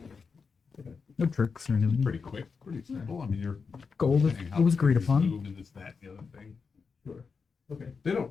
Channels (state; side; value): quieter; right; 5.2 dB